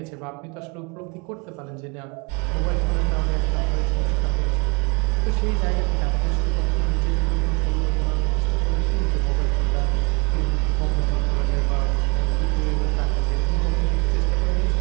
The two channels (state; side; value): quieter; left; 29.4 dB